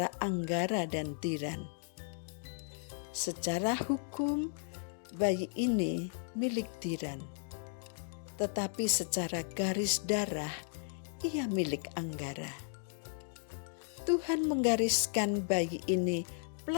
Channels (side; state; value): right; silent; digital silence